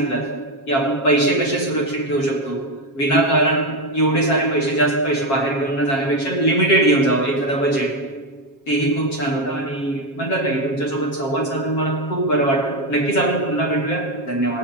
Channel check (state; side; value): late; right; 7.4 ms